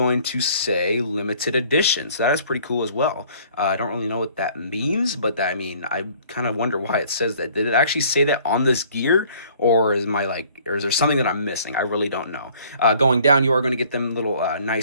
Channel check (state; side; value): inverted; both; correlation -0.56